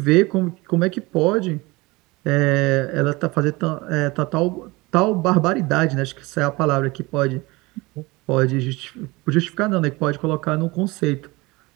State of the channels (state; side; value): quieter; left; 23.0 dB